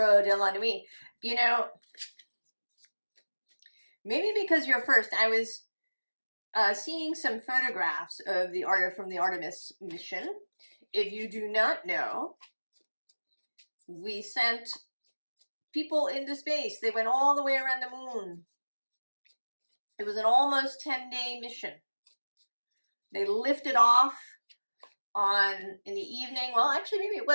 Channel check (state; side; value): inverted; both; correlation -1.00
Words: de la Nuit. You know, maybe because you're first, I was seeing some photographs of from the Artemis mission. If you do not know, we sent people into space. They went all the way around the moon. It was an almost 10-day mission. They lifted off in the evening. Well, actually, maybe it